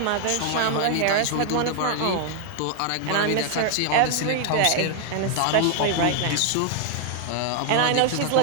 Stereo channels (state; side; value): different; both; correlation 0.00